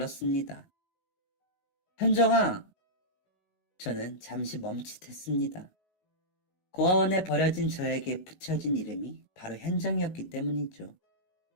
현정아! 저는 잠시 멈칫했습니다. 고아원에 버려진 저에게 붙여진 이름이 바로 현정이었기 때문이죠.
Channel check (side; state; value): right; late; 19 ms